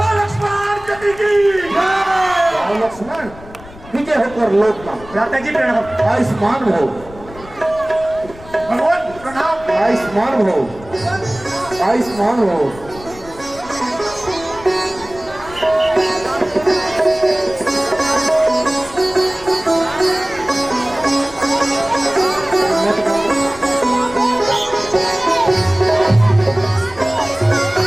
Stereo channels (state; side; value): noise; left; rumble, 19 dB below the sound